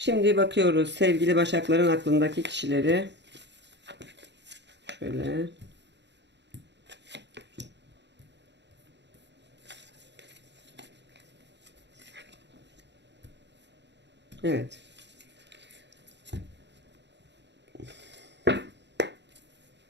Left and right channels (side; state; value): left; late; 0.51 ms